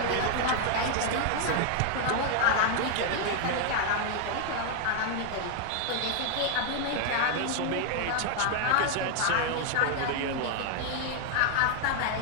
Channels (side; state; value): both; different; correlation 0.00